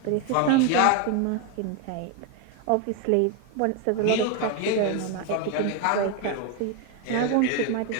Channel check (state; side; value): different; both; correlation 0.02